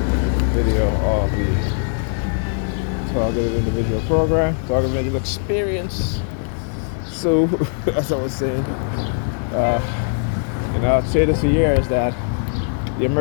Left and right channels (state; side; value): silent; right; digital silence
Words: video of the Targeted Individual Program, Targeted Individual Experience. So, as I was saying, I've said this for years that the